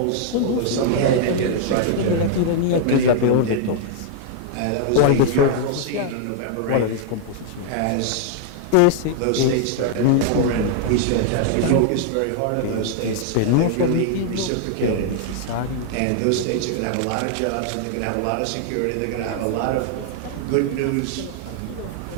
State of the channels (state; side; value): different; both; correlation 0.00